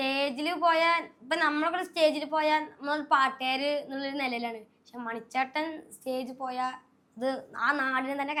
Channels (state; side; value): identical; both; correlation 1.00